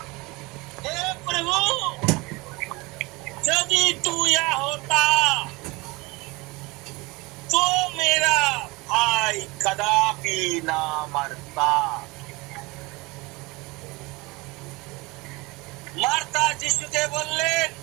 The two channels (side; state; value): left; quieter; 24.0 dB